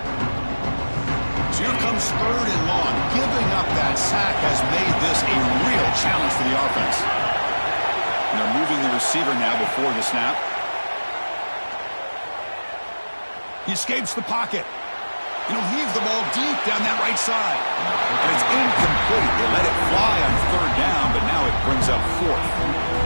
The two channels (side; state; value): both; inverted; correlation -1.00